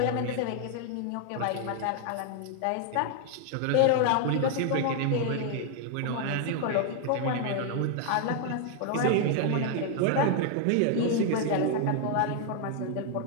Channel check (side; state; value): both; different; correlation 0.00